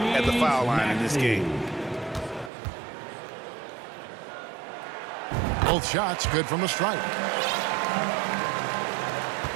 at the foul line in this game. Both shots good from the stripe.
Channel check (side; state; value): left; drops out; at 2.5 s